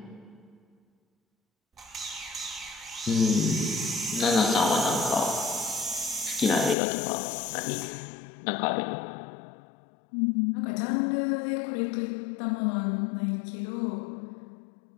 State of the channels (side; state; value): right; drops out; at 6.8 s